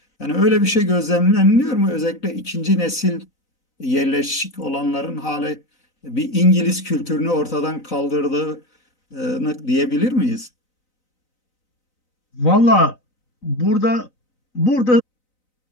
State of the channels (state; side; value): late; right; 3.9 ms